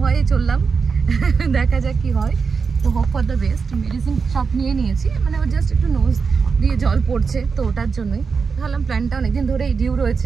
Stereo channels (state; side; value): quieter; left; 5.3 dB